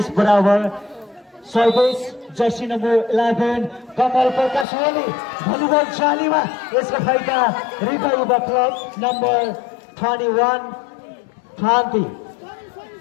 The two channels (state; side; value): drops out; right; at 4.7 s